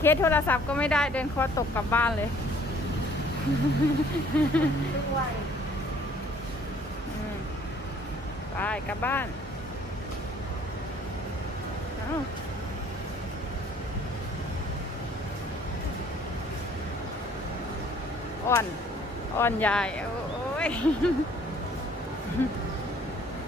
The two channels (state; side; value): normal; both; correlation 0.57